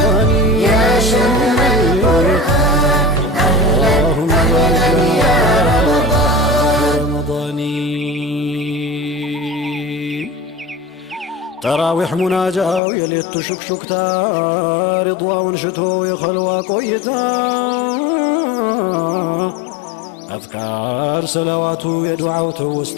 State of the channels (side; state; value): right; drops out; at 12.8 s